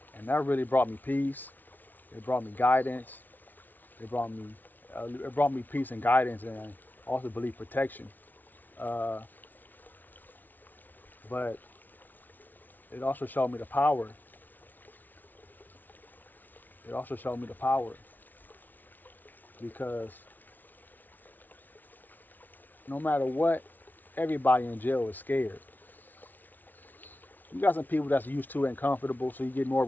and that really brought me peace. It brought me guidance. It brought me peace and guidance, and also believe protection. Uh, but it also showed me the power. It also showed me the power because no matter what, everybody in jail is scared. You got some people that's used to it and comfortable, so you get more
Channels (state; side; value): late; right; 0.084 ms